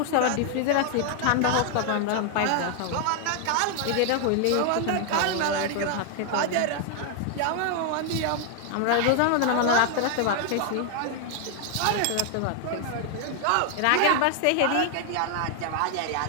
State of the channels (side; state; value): both; different; correlation 0.00